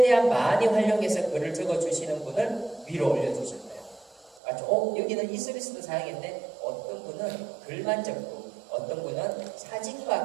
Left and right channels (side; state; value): left; drops out; at 4.4 s